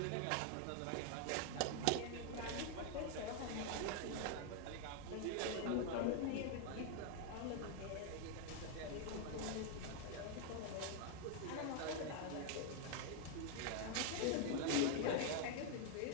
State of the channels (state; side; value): different; both; correlation 0.00